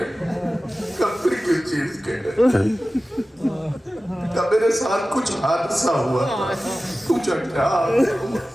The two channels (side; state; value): both; normal; correlation 0.96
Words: کب پھر کس چیز کے ہے؟ کب میرے ساتھ کچھ حادثہ ہوا تھا، پوچھا کیا